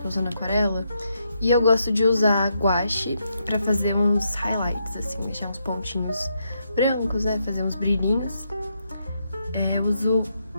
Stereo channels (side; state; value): both; inverted; correlation -0.79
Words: tô usando aquarela. E eu gosto de usar guache pra fazer uns highlights, assim, deixar uns pontinhos brancos, né? Fazer uns brilhinhos. Eu uso,